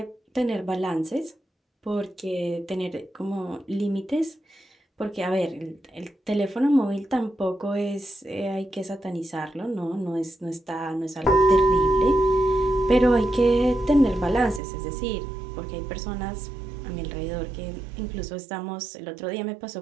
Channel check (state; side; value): drops out; left; at 14.6 s